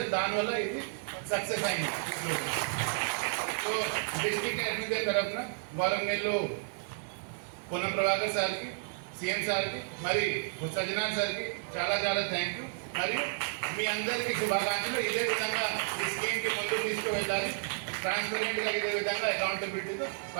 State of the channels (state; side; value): silent; left; 56 dB below the other